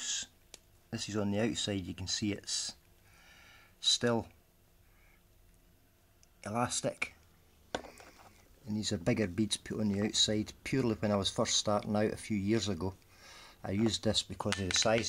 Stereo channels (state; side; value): identical; both; correlation 1.00